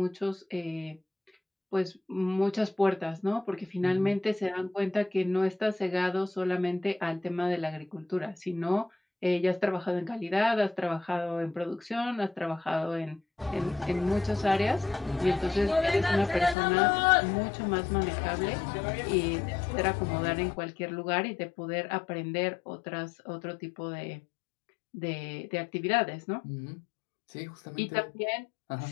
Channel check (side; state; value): right; drops out; at 16.6 s